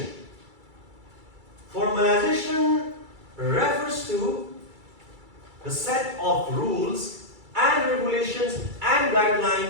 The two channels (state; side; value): late; left; 2.3 ms